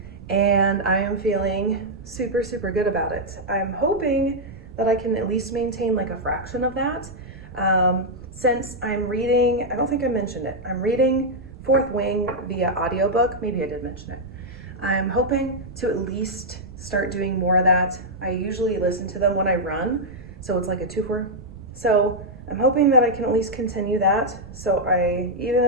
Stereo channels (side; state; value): right; noise; rumble, 18 dB below the sound